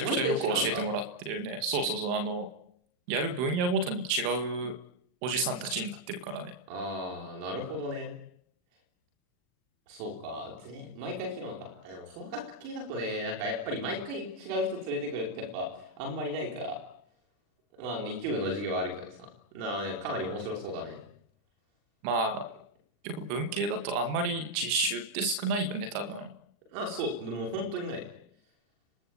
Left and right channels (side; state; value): left; late; 39 ms